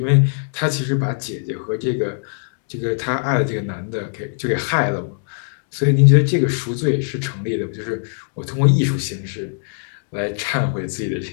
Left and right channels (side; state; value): right; silent; digital silence